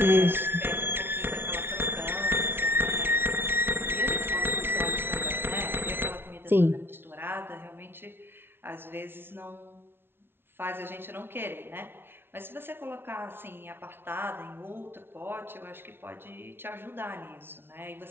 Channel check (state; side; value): late; left; 0.11 ms